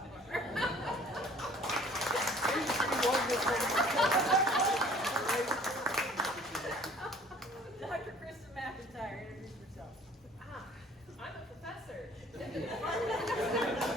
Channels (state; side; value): normal; both; correlation 0.51